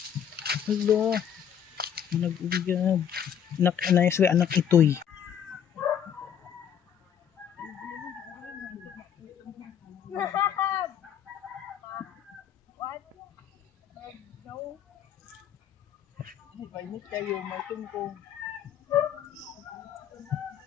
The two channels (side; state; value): right; quieter; 8.8 dB